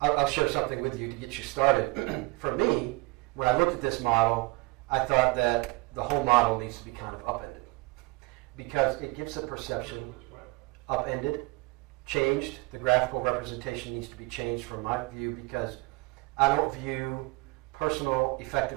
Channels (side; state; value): left; quieter; 24.6 dB